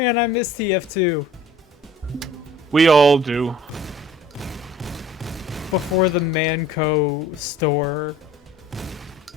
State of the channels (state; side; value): normal; both; correlation 0.50